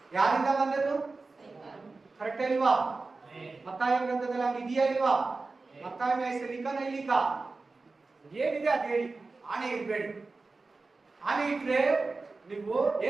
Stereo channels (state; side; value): quieter; left; 3.8 dB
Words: ಯಾರಿಂದ ಬಂದದ್ದು? ಕರೆಕ್ಟ್ ಇಲ್ವಾ? ಮತ್ತಾಯ ಗ್ರಂಥದಲ್ಲಿ ಹಂಗಿದೆಯಾ ಇಲ್ವಾ? ಮತ್ತಾಯ ಹೆಸರು ಲಿಖ ನೈ ಲಿಖ ಏನಿದೆ ಅದು ಹೇಳಿ. ಆಣೆ ಇರ್ಬೇಡಿ. ಆಣೆ ಇಟ್ರೆ ನೀವು